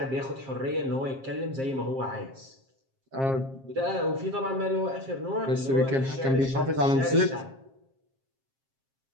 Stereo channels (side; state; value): left; late; 7.5 ms